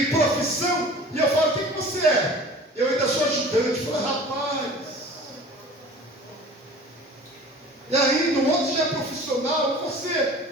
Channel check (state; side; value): normal; both; correlation 0.43